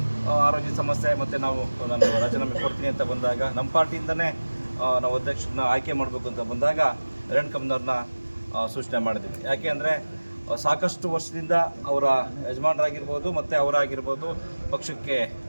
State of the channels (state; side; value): inverted; both; correlation -1.00